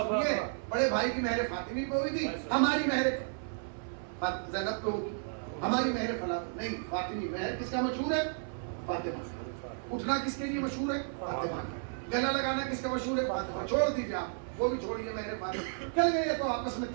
سنیے بڑے بھائی کی مہر فاطمی پہ ہوئی تھی, ہماری مہر زینب پہ ہوگی, ہماری مہر فلاں نہیں فاطمی. مہر کس کا مشہور ہے؟ فاطمہ. اٹھنا کس کے لیے مشہور ہے؟ فاطمہ. گلا لگانا کس کا مشہور ہے؟ فاطمہ. چھوڑ دیجیے آپ, وہ بھی چھوڑیے مہر فاطمہ. چل گئے تو آپس میں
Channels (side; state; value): left; silent; 56 dB below the other